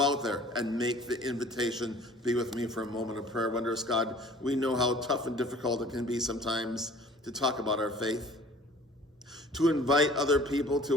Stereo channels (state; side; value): normal; both; correlation 0.49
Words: out there and make the invitation. Be with me for a moment of prayer. Wondrous God, we know how tough and difficult it can be sometimes to talk about our faith, to invite other people